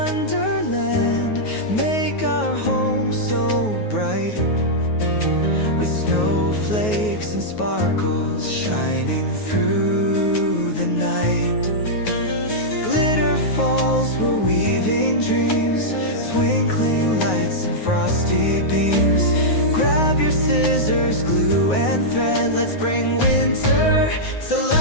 make our home so bright, with snowflakes and sparkles shining through the night. Glitter falls, we're weaving dreams, twinkling lights and frosty beams. Grab your scissors, glue and thread, let's bring winter to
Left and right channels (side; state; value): right; late; 9.4 ms